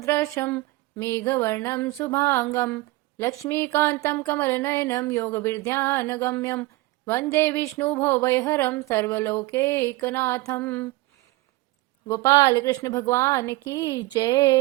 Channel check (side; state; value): left; quieter; 20.1 dB